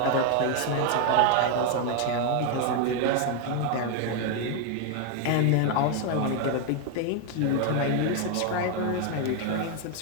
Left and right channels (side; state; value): both; different; correlation 0.01